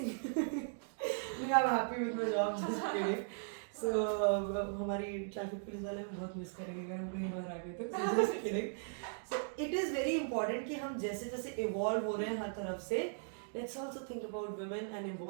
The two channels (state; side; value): silent; left; digital silence